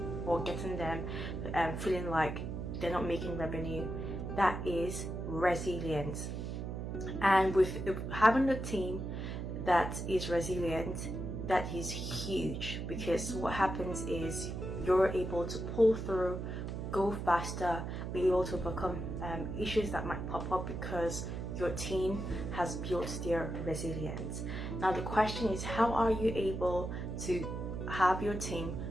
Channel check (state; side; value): noise; right; hum, 5 dB below the sound